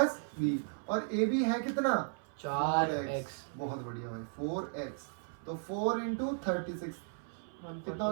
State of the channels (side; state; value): left; silent; 54 dB below the other